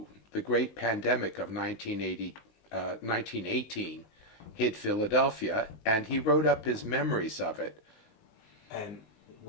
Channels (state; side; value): late; right; 19 ms